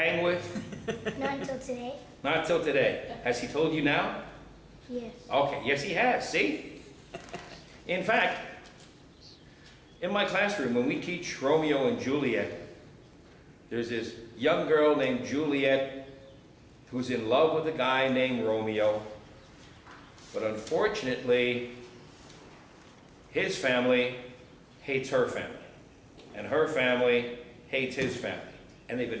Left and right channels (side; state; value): both; identical; correlation 1.00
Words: with? Not until today. Not till today. Has he told you now? Yes. Okay, yes he has, see? In fact, in my classroom, when we teach Romeo and Juliet, there's this young girl named Juliet who's in love with a guy named Romeo. But unfortunately, his family hates her family. And her family hates his family. And they've